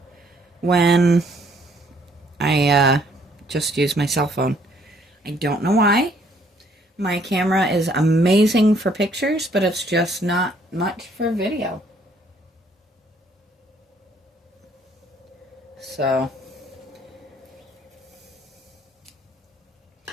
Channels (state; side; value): normal; both; correlation 0.64